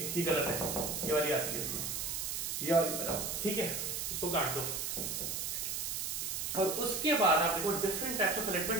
है, ये गलत है, ये वाली आती है इसमें, ये वाली बनाओ, ठीक है, इसको काट दो। और उसके बाद आप देखो different types of fillet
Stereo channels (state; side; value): noise; right; hiss, 2 dB below the sound